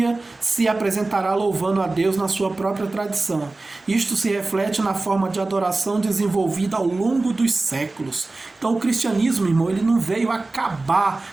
se apresentará louvando a Deus na sua própria tradição. Isto se reflete na forma de adoração desenvolvida ao longo dos séculos. Então o cristianismo, irmão, ele não veio acabar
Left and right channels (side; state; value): left; quieter; 3.2 dB